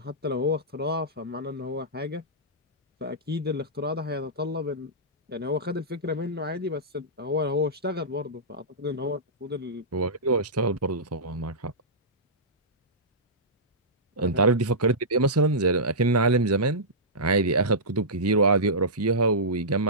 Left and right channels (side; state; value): both; normal; correlation -0.16